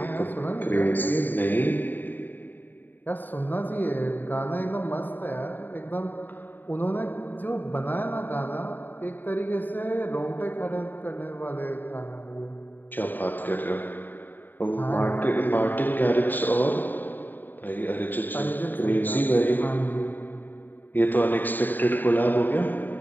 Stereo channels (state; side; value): late; right; 0.090 ms